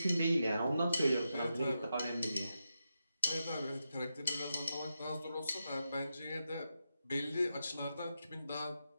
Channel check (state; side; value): inverted; both; correlation -0.87